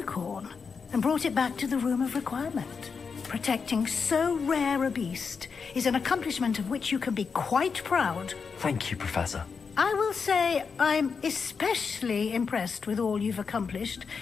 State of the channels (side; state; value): right; quieter; 5.5 dB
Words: and brought it back to the Room of Requirement. Protecting so rare a beast is an accomplishment of which you can be quite proud. Thank you, Professor. I will say I'm especially impressed with all you've accomplished